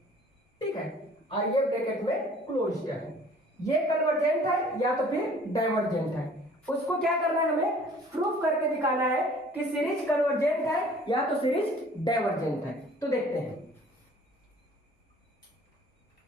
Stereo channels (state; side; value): normal; both; correlation 0.52